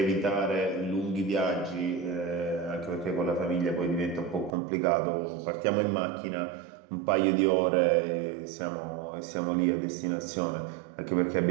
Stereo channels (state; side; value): drops out; left; at 4.5 s